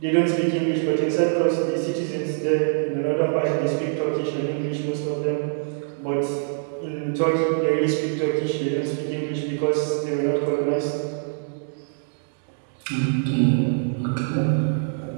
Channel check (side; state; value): left; silent; digital silence